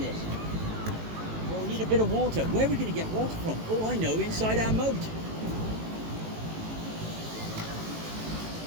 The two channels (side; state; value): left; late; 18 ms